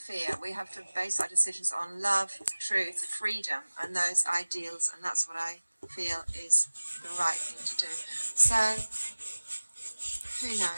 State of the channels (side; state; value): both; inverted; correlation -1.00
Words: We have to base our decisions on love, truth, freedom, and those ideals, and that's what I feel is the right thing to do. So, who